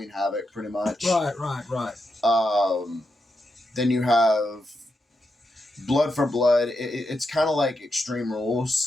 Havoc, pretty much. Right. Then you have Blood for Blood. It's kind of like Extreme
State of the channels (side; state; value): both; normal; correlation 0.85